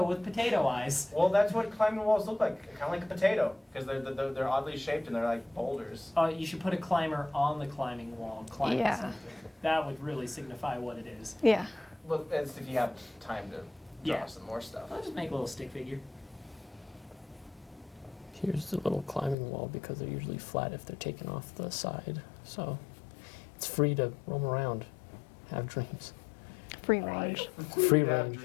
with potato eyes. Well, that's what climbing walls look like, kind of like a potato, because they're oddly shaped and they're like boulders. You should put a climber on the climbing wall, climbing Yeah. something. That would really signify what it is. Yeah. Well, that's if you have time to draw Yeah. some more stuff. I'll just make a little stick figure. Here's the little climbing wall because they're usually flat if they're taken off the side. So it's free to roam around, have dreams. Free range. Free You have range.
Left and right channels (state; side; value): drops out; right; at 19.4 s